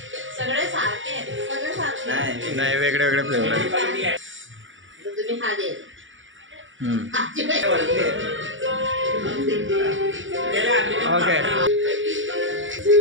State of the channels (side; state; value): left; late; 0.56 ms